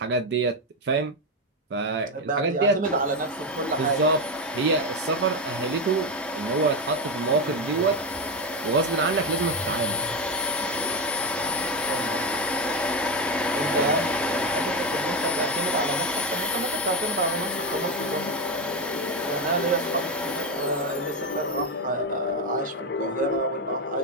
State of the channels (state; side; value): normal; both; correlation 0.11